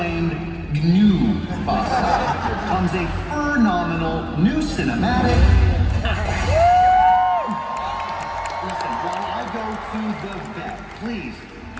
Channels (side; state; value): both; identical; correlation 1.00